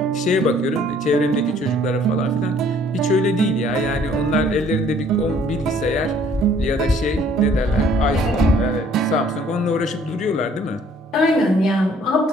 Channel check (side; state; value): both; normal; correlation 0.59